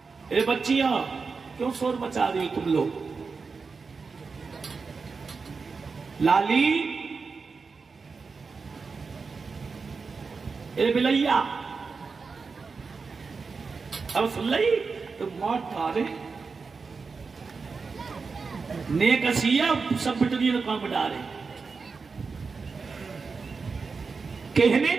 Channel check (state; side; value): quieter; left; 4.8 dB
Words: ए बच्चियां क्यों शोर मचा रही हो तुम लोग? लाली, ए बिलैया, अब सुन ली तो मौत डारे ने कसिया सब बिटरी काम डारे। कहने